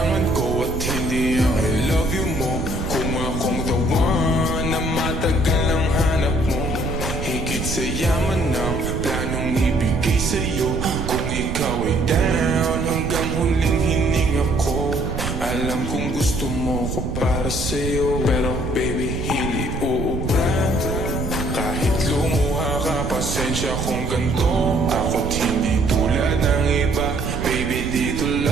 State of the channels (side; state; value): right; noise; rumble, 4 dB below the sound